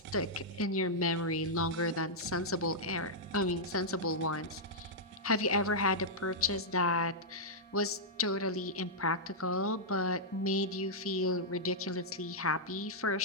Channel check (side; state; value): both; normal; correlation -0.08